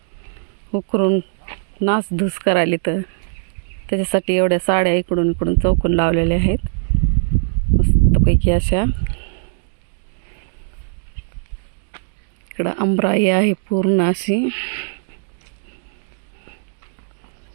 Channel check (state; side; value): silent; left; digital silence